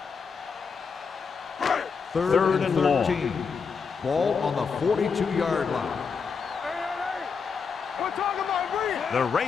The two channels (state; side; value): quieter; right; 5.7 dB